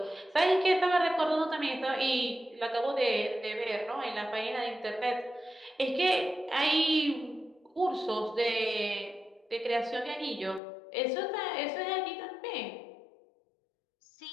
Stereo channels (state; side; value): drops out; right; at 10.6 s